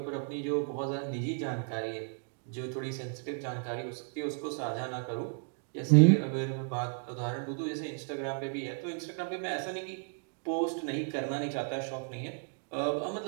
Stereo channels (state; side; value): silent; left; 55 dB below the other